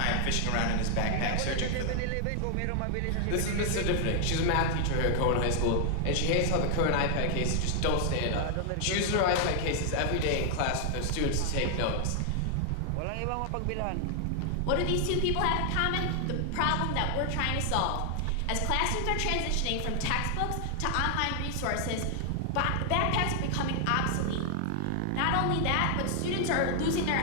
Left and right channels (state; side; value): different; both; correlation 0.00